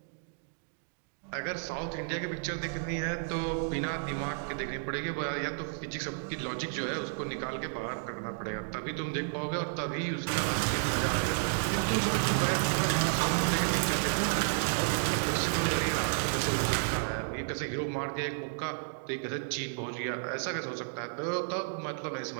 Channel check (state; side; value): silent; left; digital silence